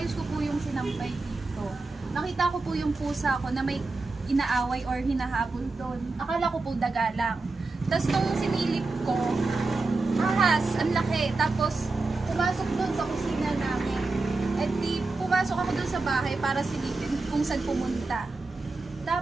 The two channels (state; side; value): quieter; left; 3.6 dB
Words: ko po yung sinampay dito, nakita ko po yung pusa ko na may inaaway or hinahabol doon. Akala ko po daga lang. Tapos nung sinilip ko, ahas, ang laki. Tapos pumasok doon sa kusina namin. At di pumasok ako doon sa bahay para silipin kung saan pumunta.